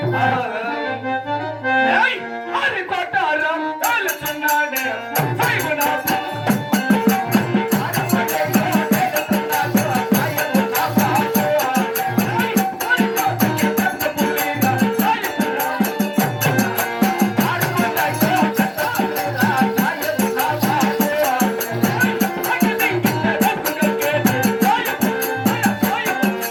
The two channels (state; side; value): identical; both; correlation 1.00